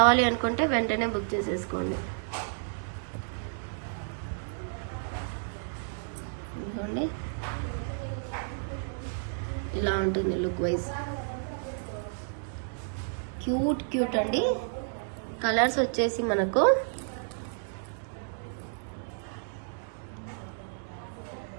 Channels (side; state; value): left; silent; digital silence